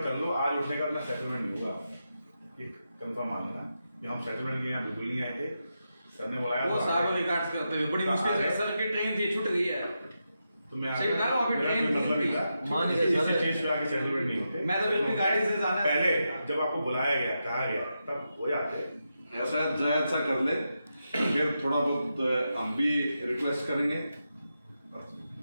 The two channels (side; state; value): both; inverted; correlation -0.87